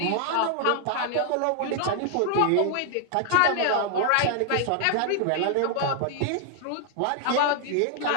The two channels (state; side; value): different; both; correlation 0.00